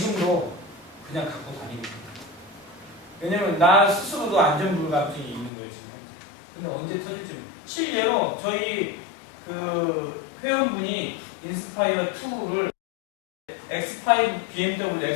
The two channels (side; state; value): right; drops out; at 5.5 s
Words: 그냥 갖고 다니고 있습니다. 왜냐면 나 스스로도 안전불감증이 있는 거예요, 지금 현재. 근데 언제 터질지. 실례로 저희 회원분이 인스파이어 2를 X5, BMW